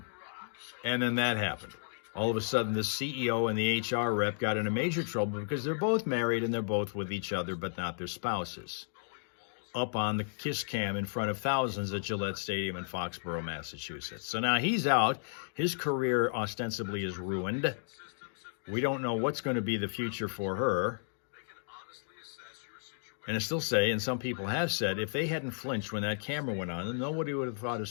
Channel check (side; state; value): right; silent; digital silence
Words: then that happened. All of a sudden, the CEO and the HR rep got into major trouble because they're both married and they're both with each other, but not their spouses, up on the kiss cam in front of thousands at Gillette Stadium in Foxborough, Massachusetts. So now he's out. His career ostensibly is ruined. We don't know what's going to be the future for her. And I still say, and some people have said, if they hadn't flinched when that camera went on, then nobody would have thought a